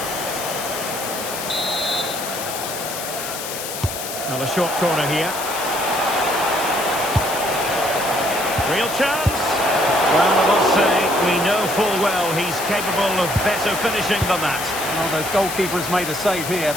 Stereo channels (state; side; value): noise; left; hiss, 7 dB below the sound